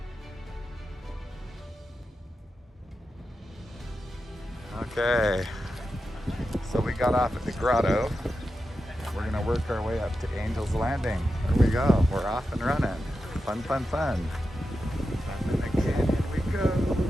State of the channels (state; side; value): normal; both; correlation 0.90